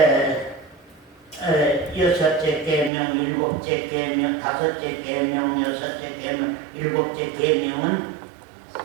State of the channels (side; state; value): left; drops out; at 2.9 s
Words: 여섯째 계명, 일곱째 계명, 다섯째 계명, 여섯째 계명, 일곱째 계명은